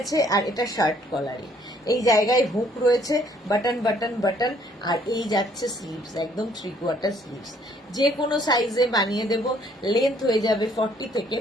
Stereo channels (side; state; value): both; normal; correlation 0.63